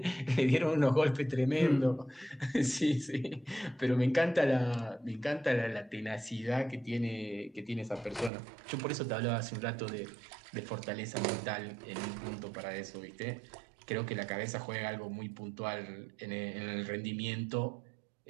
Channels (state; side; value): drops out; left; at 8.3 s